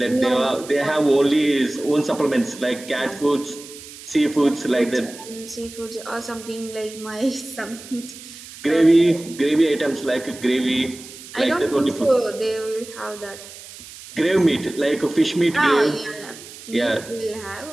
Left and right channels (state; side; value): noise; right; hiss, 16 dB below the sound